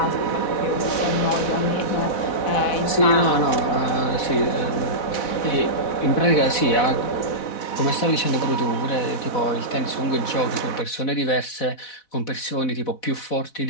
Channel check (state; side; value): late; right; 4.1 ms